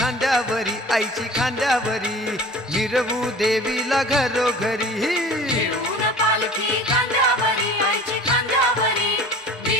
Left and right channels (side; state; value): both; normal; correlation 0.42